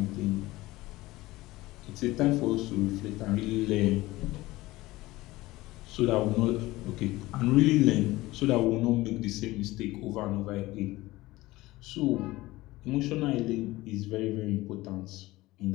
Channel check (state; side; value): quieter; right; 18.8 dB